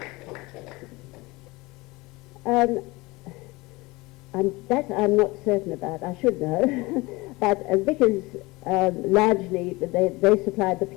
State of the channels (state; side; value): quieter; right; 22.7 dB